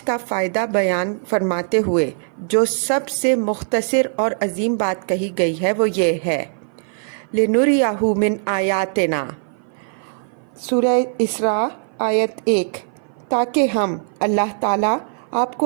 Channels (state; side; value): silent; left; 56 dB below the other